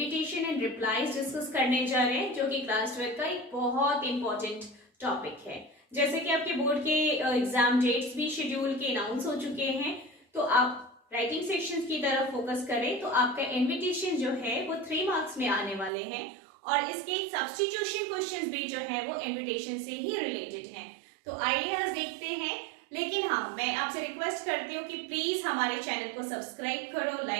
एंड रिप्लाईज डिस्कस करने जा रहे हैं, जो कि क्लास 12 का एक बहुत इंपॉर्टेंट टॉपिक है। जैसे कि आपके बोर्ड के एग्जाम डेट्स भी शेड्यूल के अनाउंस हो चुके हैं, तो आप राइटिंग सेक्शंस की तरफ फोकस करें तो आपका इनविटेशन जो है वो 3 मार्क्स में आने वाले हैं और इसके सब्स्टिट्यूशन क्वेश्चंस भी जो है वो इनविटेशन से ही रिलेटेड हैं। तो आइए आज देखते हैं। लेकिन हाँ, मैं आपसे रिक्वेस्ट करती हूँ कि प्लीज हमारे चैनल को सब्सक्राइब करो,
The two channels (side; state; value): left; drops out; at 15.9 s